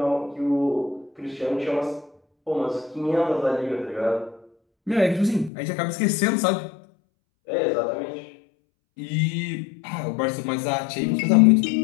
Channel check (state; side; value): drops out; right; at 5.5 s